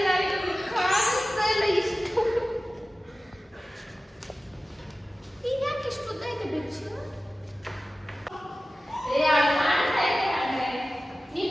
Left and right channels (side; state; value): both; normal; correlation 0.96